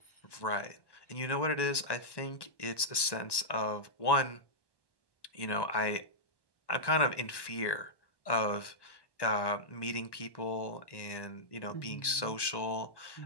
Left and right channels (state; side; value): late; right; 1.1 ms